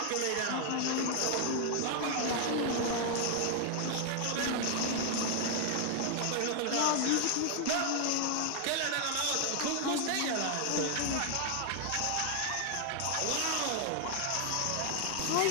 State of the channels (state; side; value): different; both; correlation 0.00